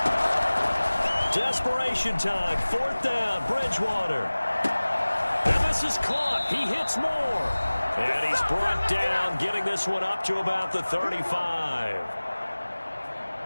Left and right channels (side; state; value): both; inverted; correlation -1.00